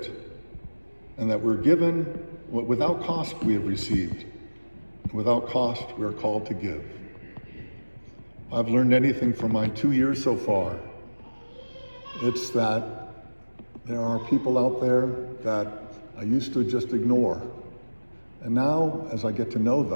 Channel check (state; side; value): inverted; both; correlation -1.00